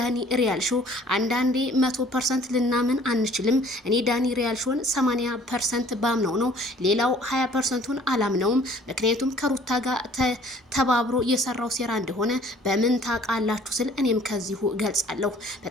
ሪያል ሾው አንዳንዴ 100% ልናምን አንችልም። እኔ ዳኒ ሪያል ሾውን 80% ባምነው ነው፣ ሌላው 20%ን አላምነውም። ምክንያቱም ከሩታ ጋር ተባብሮ የሰራው ሴራ እንደሆነ በምን ታውቃላችሁ ስል እኔም ከዚሁ ገልጻለሁ።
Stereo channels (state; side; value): normal; both; correlation 0.54